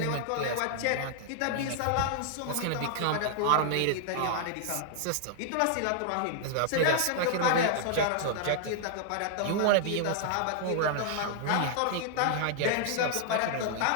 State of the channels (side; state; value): both; different; correlation 0.00